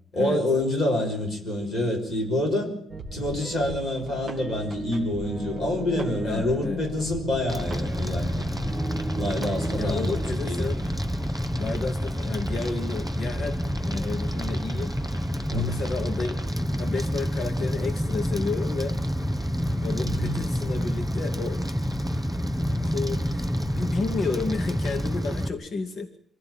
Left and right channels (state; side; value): normal; both; correlation 0.81